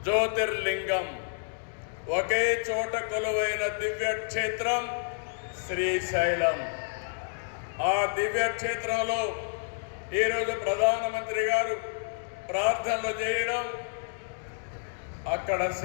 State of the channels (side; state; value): right; silent; digital silence